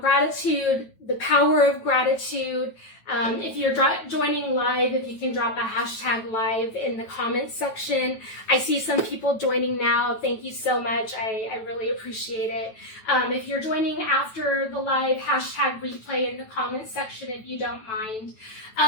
the power of gratitude. If you're joining live, if you can drop a hashtag live in the comments section. I see some people joining now. Thank you so much. I really appreciate it. If you're joining after the live, hashtag replay in the comments section if you don't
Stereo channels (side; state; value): right; late; 9.1 ms